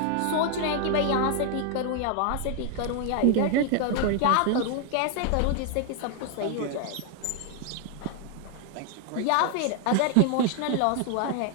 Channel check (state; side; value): different; both; correlation 0.00